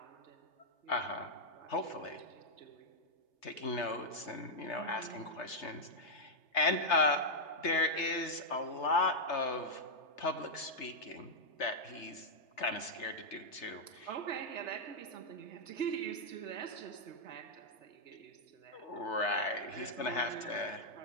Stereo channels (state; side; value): late; right; 3.3 ms